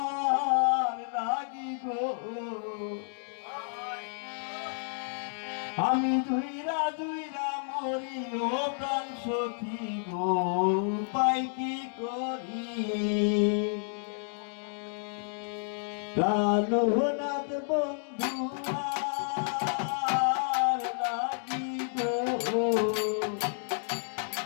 লাগি গো, আমি জুইরা জুইরা মরি ও প্রাণ সখী গো, পাই কি করি। কাননাথ বন্ধু আর লাগি গো,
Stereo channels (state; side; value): silent; right; digital silence